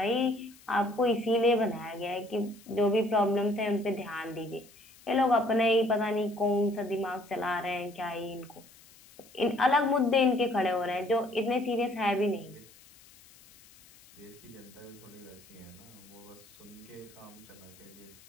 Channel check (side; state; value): left; noise; hiss, 24 dB below the sound